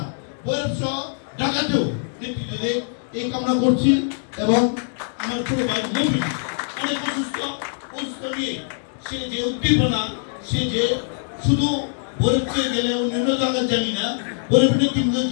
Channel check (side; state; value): right; silent; digital silence